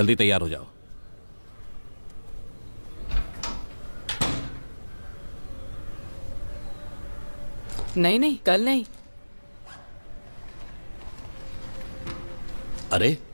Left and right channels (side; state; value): both; inverted; correlation -1.00